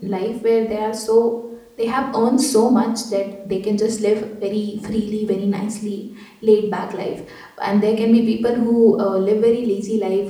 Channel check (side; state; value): both; identical; correlation 1.00